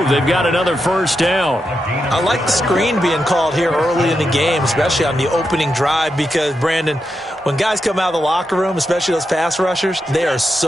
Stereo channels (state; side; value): normal; both; correlation 0.86